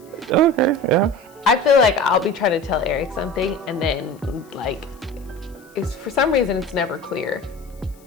okay, yeah. I feel like I'll be trying to tell Eric something, and then like, it's for some reason it's never clear.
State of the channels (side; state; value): left; noise; hiss, 29 dB below the sound